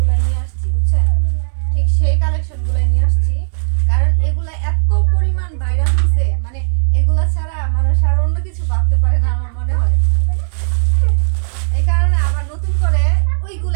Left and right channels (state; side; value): silent; left; 68 dB below the other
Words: নিয়ে আসছি, বুঝছেন? ঠিক সেই কালেকশনগুলোই নিয়ে আসছি, কারণ এগুলা এত পরিমাণ ভাইরাল হয়েছে, মানে এগুলা ছাড়া মানুষ আর অন্য কিছু ভাবতে পারে না আমার মনে হয়। এই কারণে আবার নতুন করে